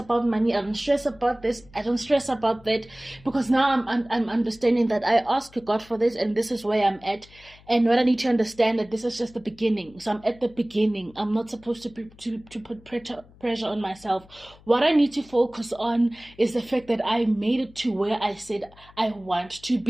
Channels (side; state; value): left; noise; hum, 25 dB below the sound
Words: money. I don't stress about this. I don't stress about that, because now I'm understanding that I ask God for this, and this is where I'm at, and what I need to understand that this is just the beginning. So I'm at the beginning. I'm not supposed to to put pressure on myself. What I need to focus on is the fact that I made it to where I said I want to